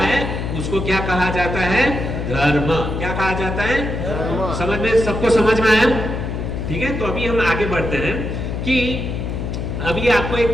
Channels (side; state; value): left; noise; hum, 4 dB below the sound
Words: उसको क्या कहा जाता है? धर्म। क्या कहा जाता है? धर्म। समझ में, सबको समझ में आया? ठीक है, तो अभी हम आगे बढ़ते हैं कि अभी आपको